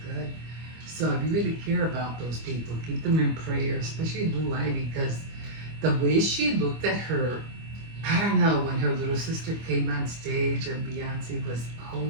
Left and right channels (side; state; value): left; late; 25 ms